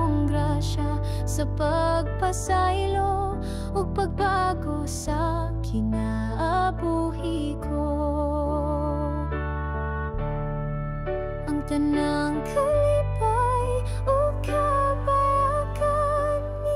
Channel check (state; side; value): identical; both; correlation 1.00